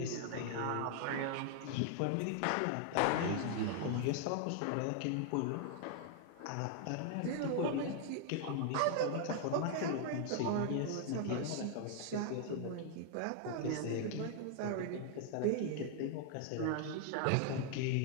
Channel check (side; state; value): both; different; correlation 0.00